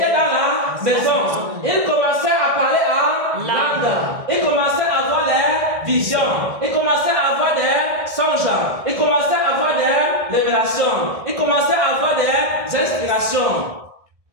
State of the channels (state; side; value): late; left; 1.6 ms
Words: dans la maison. Il commençait à parler en langue. Il commençait à avoir des visions. Il commençait à avoir des songes. Il commençait à avoir des révélations. Il commençait à avoir des inspirations.